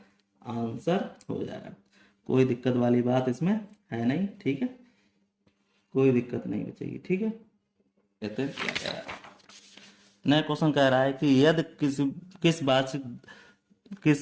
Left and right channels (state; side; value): identical; both; correlation 1.00